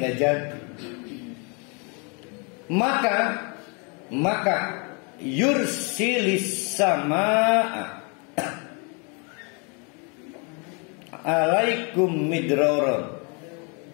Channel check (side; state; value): right; quieter; 34.4 dB